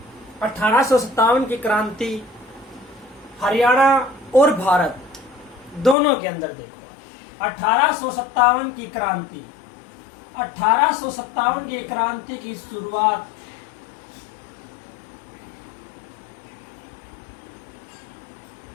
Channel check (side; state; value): right; drops out; at 6.0 s